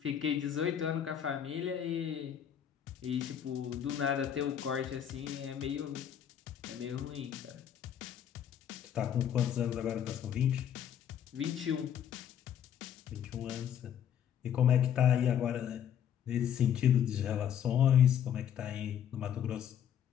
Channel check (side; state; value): right; quieter; 9.3 dB